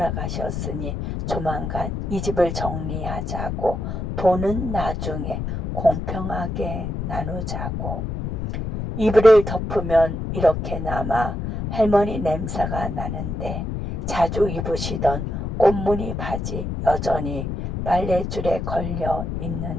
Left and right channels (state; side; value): noise; left; rumble, 4 dB below the sound